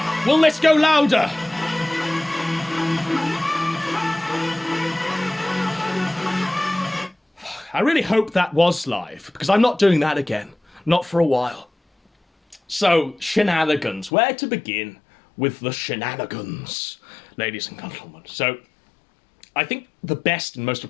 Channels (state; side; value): drops out; right; at 14.1 s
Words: Will this go louder? I really hope that was live, because I'm not doing that again. Not for a while. So, shenanigans. Where to begin with the shenanigans, ladies and gentlemen? So, I think the best and most